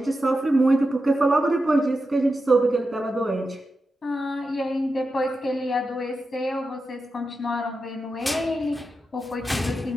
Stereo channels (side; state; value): both; normal; correlation 0.90